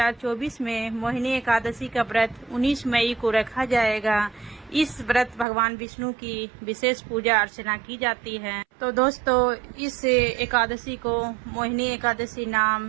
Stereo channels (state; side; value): drops out; left; at 5.5 s